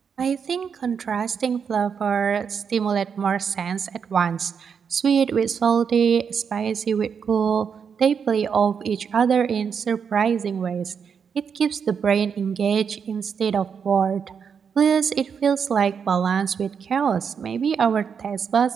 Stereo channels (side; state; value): left; quieter; 6.7 dB